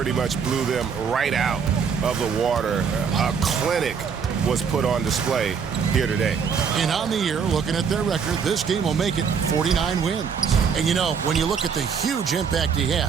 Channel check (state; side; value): quieter; left; 6.4 dB